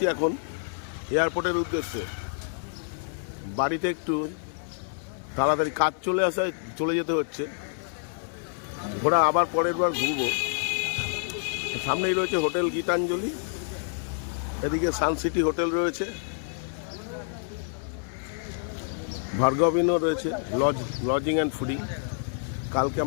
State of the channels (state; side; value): silent; right; 60 dB below the other